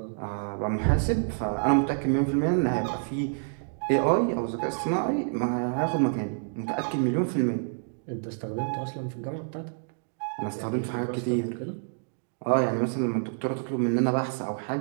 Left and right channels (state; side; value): silent; left; digital silence